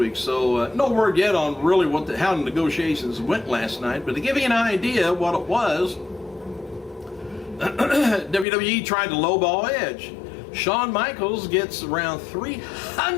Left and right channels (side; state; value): right; drops out; at 8.5 s